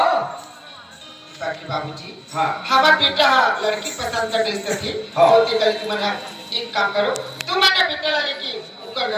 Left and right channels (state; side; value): identical; both; correlation 1.00